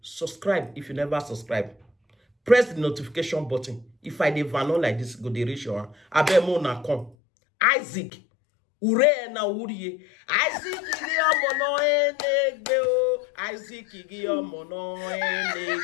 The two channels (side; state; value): right; drops out; at 7.2 s